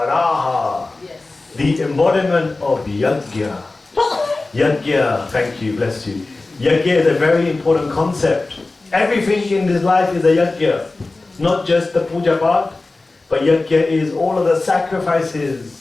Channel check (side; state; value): right; quieter; 3.3 dB